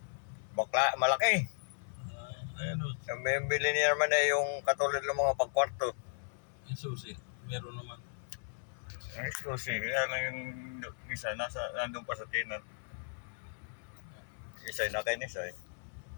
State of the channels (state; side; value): silent; right; 54 dB below the other